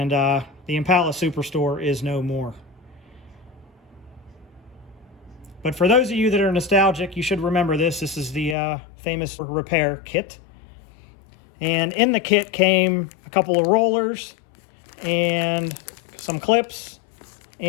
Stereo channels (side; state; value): right; drops out; at 8.6 s